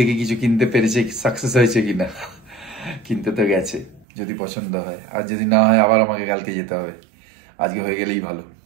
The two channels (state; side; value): drops out; left; at 4.0 s